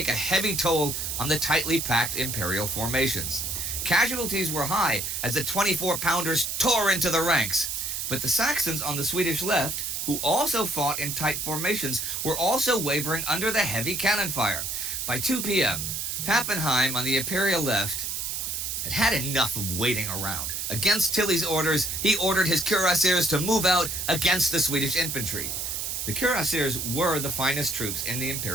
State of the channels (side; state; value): right; noise; hiss, 3 dB below the sound